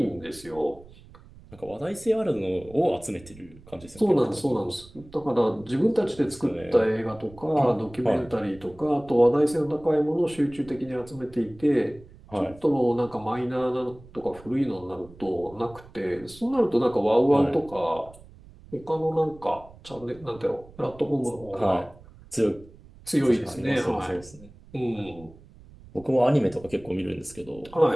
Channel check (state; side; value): noise; right; rumble, 22 dB below the sound